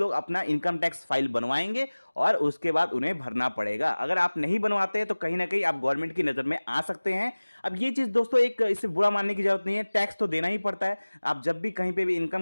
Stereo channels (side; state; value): both; inverted; correlation -1.00